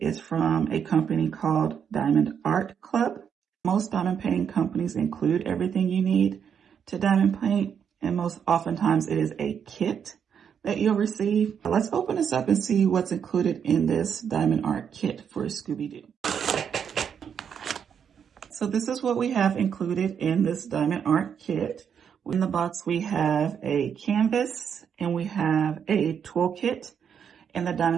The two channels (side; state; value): left; quieter; 7.7 dB